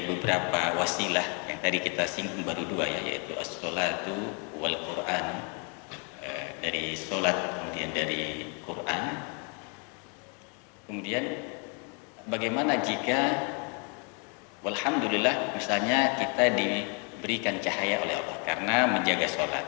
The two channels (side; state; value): right; quieter; 37.0 dB